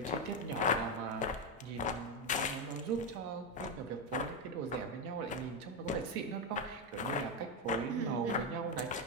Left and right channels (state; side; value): normal; both; correlation 0.07